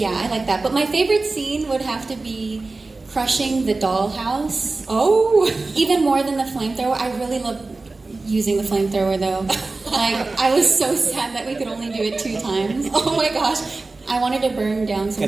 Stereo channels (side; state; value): left; quieter; 3.5 dB